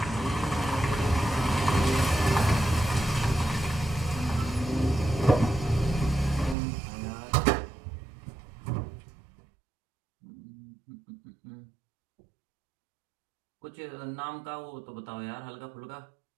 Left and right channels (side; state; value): left; drops out; at 6.6 s